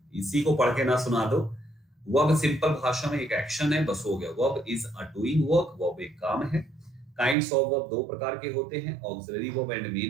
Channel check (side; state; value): left; drops out; at 7.4 s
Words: इसी को पढ़ के ना सुना दो। वर्ब सिंपल भाषा में एक एक्शन है, बस हो गया। Verb is a doing work, verb एक काम है। काइंड्स ऑफ वर्ब दो प्रकार के होते हैं, auxiliary verb and